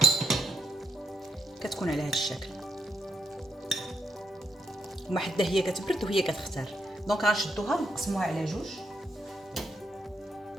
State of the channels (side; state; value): both; normal; correlation 0.79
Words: كتكون على هذا الشكل. وما حتى هي كتبرد وهي كتختار. دونك غنشدوها ونقسموها على جوج.